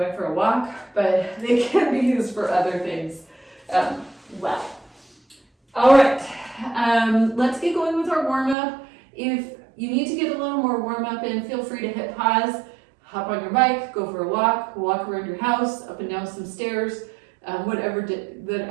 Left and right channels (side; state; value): left; drops out; at 8.6 s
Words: for a walk, but they can be used for other things well. All right, let's get going with our warm-up. If you need to get a little more warm-up in, feel free to hit pause, hop on your bike, go for a walk around your house, up and down some stairs, whatever